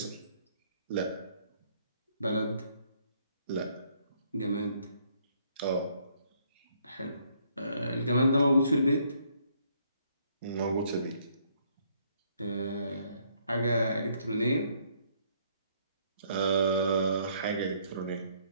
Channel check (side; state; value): both; inverted; correlation -0.67